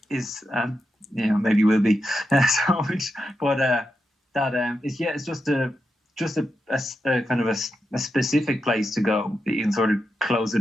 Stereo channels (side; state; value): both; normal; correlation 0.88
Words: is maybe will be. It's just a kind of a specific place to go that you can sort of close the